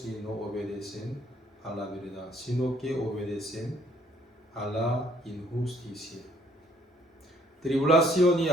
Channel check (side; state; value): both; normal; correlation 0.63